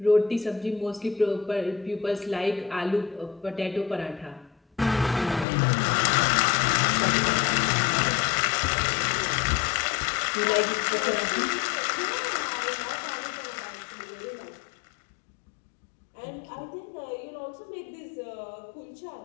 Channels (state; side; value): drops out; right; at 5.5 s